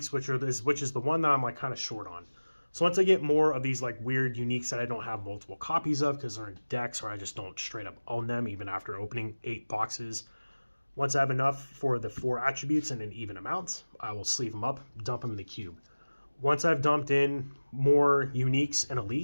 which is the one that I'm like kind of short on. So once I get more of these like weird uniques that I don't have multiple copies of because they're in decks or I just don't straight up own them even after opening 8 boxes. Once I have enough for the 4 attributes in an even amount, I will sleeve them up, dump them in the cube. Once I've dumped in more uniques and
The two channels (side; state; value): both; inverted; correlation -1.00